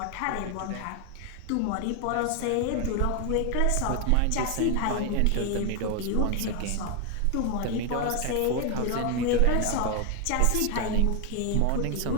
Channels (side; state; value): both; different; correlation 0.01